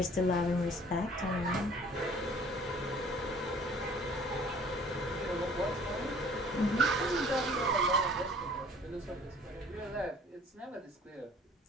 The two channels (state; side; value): normal; both; correlation 0.52